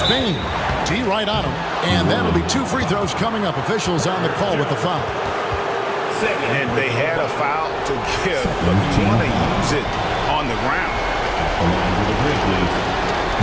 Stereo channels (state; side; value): identical; both; correlation 1.00